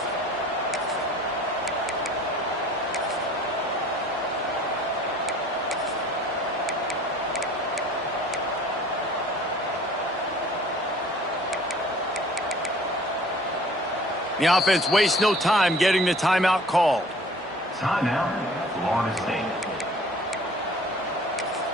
The offense wastes no time getting the timeout called. Timeout, Florida State.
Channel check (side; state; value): both; normal; correlation 0.50